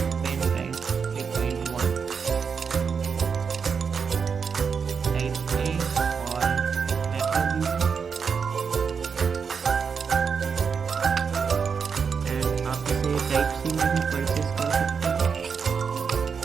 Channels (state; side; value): quieter; left; 6.1 dB